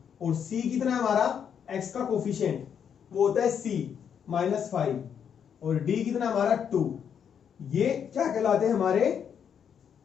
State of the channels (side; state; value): right; quieter; 7.9 dB